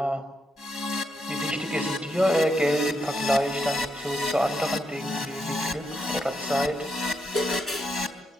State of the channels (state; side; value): normal; both; correlation 0.81